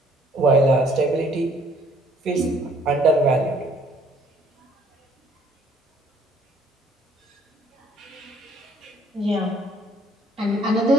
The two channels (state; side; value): normal; both; correlation 0.61